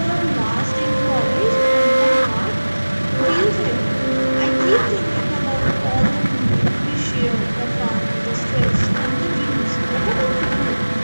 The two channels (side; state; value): both; inverted; correlation -1.00